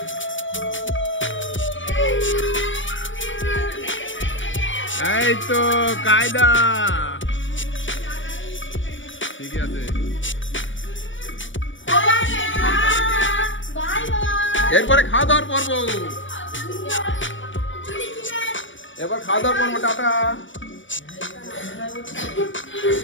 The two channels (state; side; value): late; right; 0.56 ms